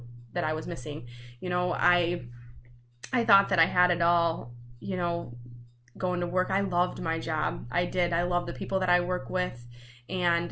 that I was missing. You know, I thought that I had it all, you know, going to work. I loved my job. I did. I love the people that I work with.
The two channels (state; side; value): identical; both; correlation 1.00